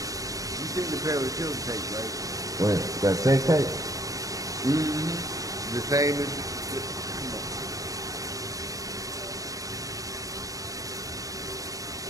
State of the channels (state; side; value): late; left; 0.17 ms